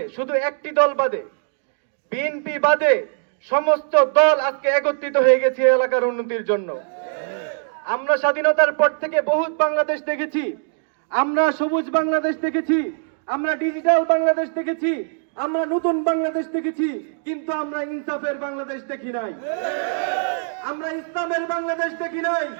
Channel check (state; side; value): silent; left; digital silence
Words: শুধু একটি দল বাদে, বিএনপি বাদে সমস্ত দল আজকে একত্রিত হয়ে গেছে এই এলাকার উন্নতির জন্য। আমরা স্বাধীনতার পর থেকে বহুত বাংলাদেশ দেখেছি, আমরা সবুজ বাংলাদেশ দেখেছি, আমরা ডিজিটাল বাংলাদেশ দেখেছি, আমরা নতুন বাংলাদেশ দেখেছি, কিন্তু আমরা ইনসাফের বাংলাদেশ দেখি নাই, আমরা ইসলামের বাংলাদেশ দেখি নাই,